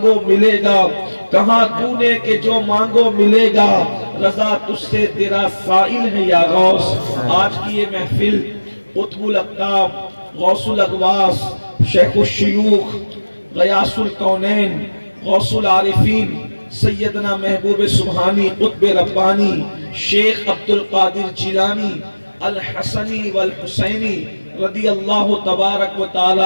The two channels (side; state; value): both; inverted; correlation -1.00